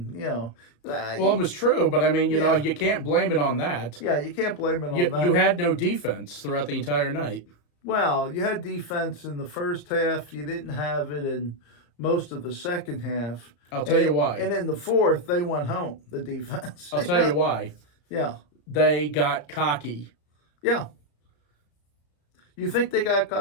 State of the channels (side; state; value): right; late; 34 ms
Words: you know. Well, it was true, but I mean, you know, you can't blame it on that. Yeah, you can't blame it on that. You had no defense throughout the entire night. Well, you had defense in the first half. You didn't have it in most of the second half. I'll tell you why. And in the fourth, they went home. The defense. I'll tell you why. Yeah. They got cocky. Yeah. You think they got